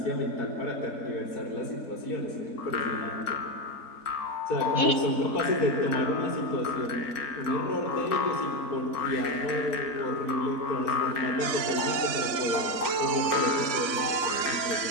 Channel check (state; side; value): late; right; 3.7 ms